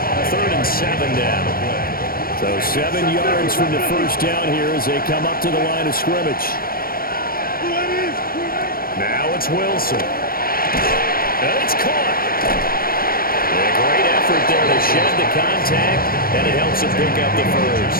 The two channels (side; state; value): right; late; 0.43 ms